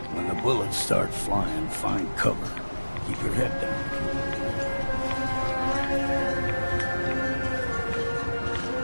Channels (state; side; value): inverted; both; correlation -1.00